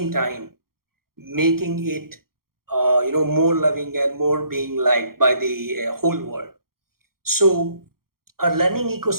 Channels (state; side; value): late; left; 0.93 ms